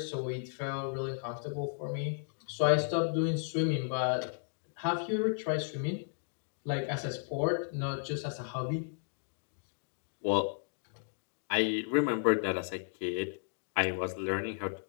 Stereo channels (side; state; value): right; silent; digital silence